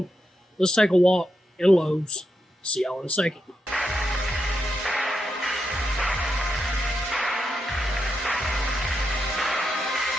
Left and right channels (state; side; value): normal; both; correlation 0.85